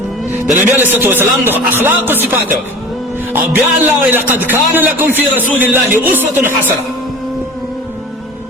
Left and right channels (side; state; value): both; normal; correlation 0.38